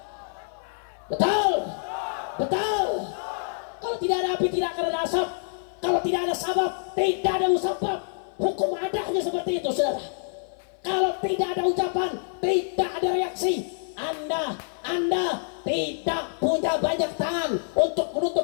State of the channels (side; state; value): right; silent; 55 dB below the other